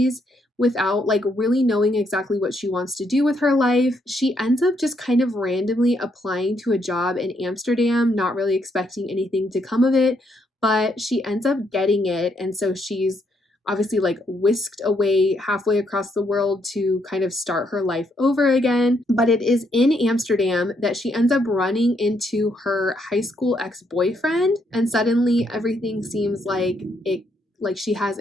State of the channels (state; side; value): normal; both; correlation 0.74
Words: without like really knowing exactly what she wants to do with her life. She ends up just kind of randomly applying to a job in Amsterdam, not really expecting anything to come of it, but she ends up getting it, and so she's obviously like whisked away halfway across the world to kind of start her life over again. But it is in Amsterdam that she ends up running into her high school ex-boyfriend, and suddenly everything seems like she has